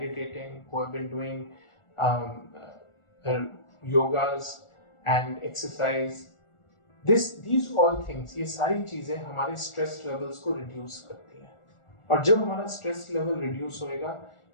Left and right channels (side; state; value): right; late; 1.4 ms